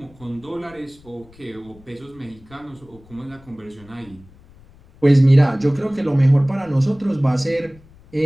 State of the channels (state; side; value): noise; left; rumble, 25 dB below the sound